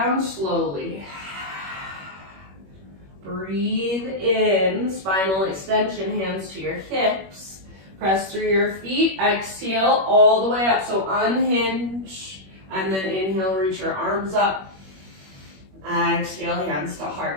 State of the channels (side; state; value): left; late; 21 ms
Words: slowly. Breathe in, spinal extension, hands to your hips. Press through your feet, exhale all the way up. So unhinge, and then inhale, reach your arms up. Exhale, hands to